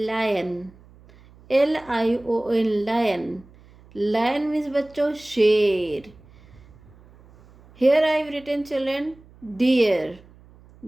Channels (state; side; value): noise; right; hum, 25 dB below the sound